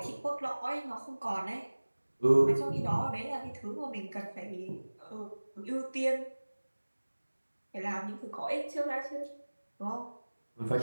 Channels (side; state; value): both; inverted; correlation -1.00